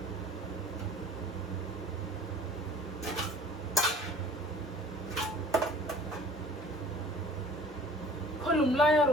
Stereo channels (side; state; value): both; normal; correlation 0.47